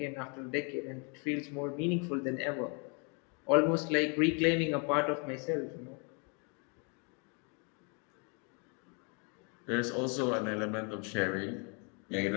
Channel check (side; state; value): right; quieter; 35.8 dB